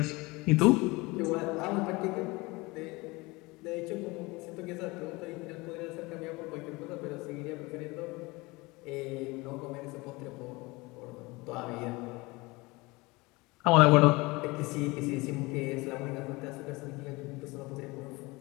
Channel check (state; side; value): quieter; right; 23.6 dB